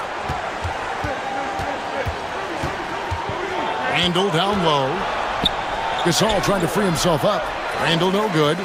Randall down low. Gasol trying to free himself up. Randall no good.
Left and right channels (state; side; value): identical; both; correlation 1.00